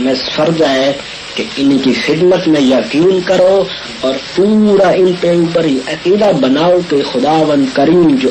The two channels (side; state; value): both; identical; correlation 1.00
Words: فرض ہے کہ ان کی خدمت میں یقین کرو اور پورا ان پہ اوپر عقیدہ بناؤ کہ خداوند کریم جو